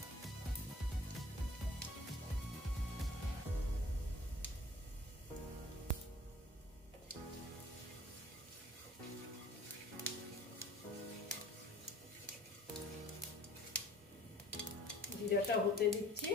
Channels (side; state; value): both; normal; correlation 0.49